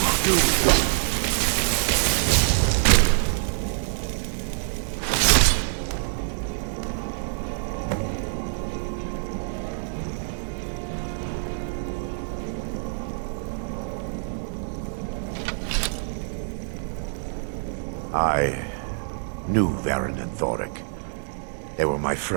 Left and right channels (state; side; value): silent; left; digital silence